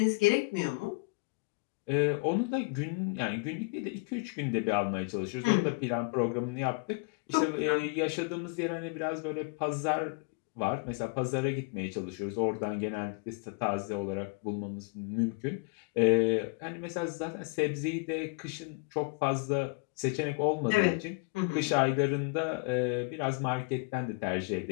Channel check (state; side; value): quieter; right; 30.7 dB